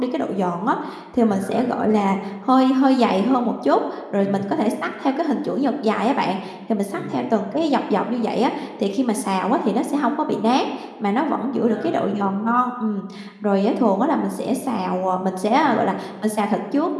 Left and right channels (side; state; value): both; identical; correlation 1.00